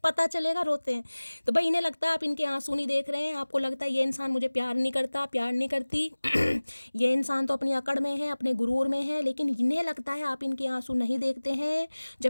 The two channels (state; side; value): inverted; both; correlation -1.00